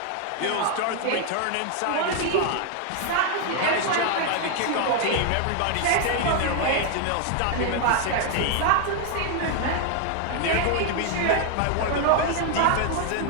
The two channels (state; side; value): different; both; correlation 0.00